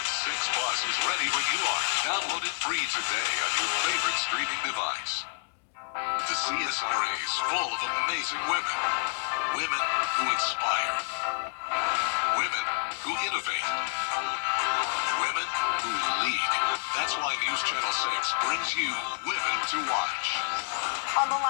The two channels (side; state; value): right; silent; digital silence